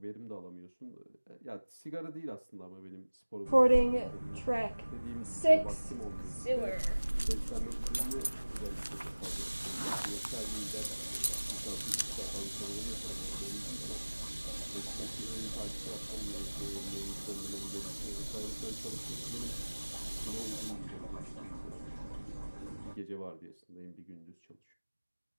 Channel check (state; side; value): inverted; both; correlation -1.00